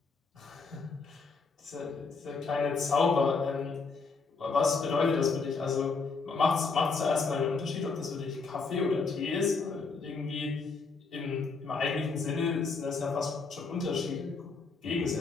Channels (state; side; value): quieter; right; 4.5 dB